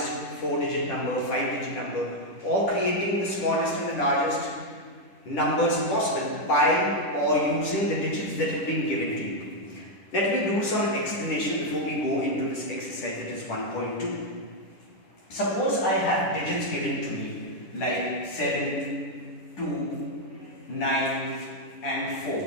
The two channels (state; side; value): late; right; 10 ms